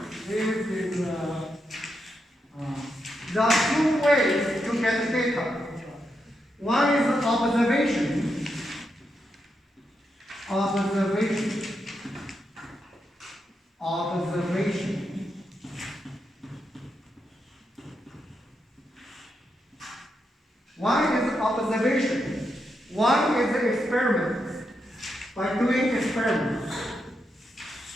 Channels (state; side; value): normal; both; correlation 0.84